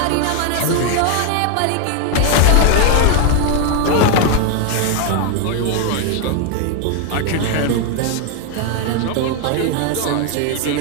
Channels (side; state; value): both; different; correlation 0.01